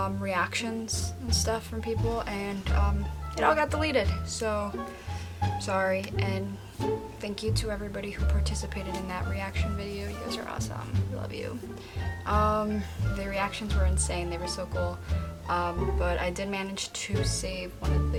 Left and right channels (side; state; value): both; identical; correlation 1.00